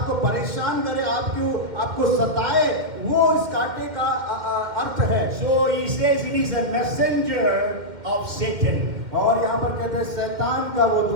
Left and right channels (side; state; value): left; late; 2.1 ms